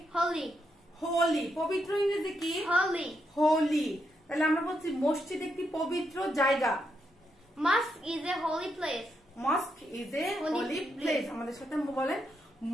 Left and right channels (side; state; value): both; normal; correlation 0.81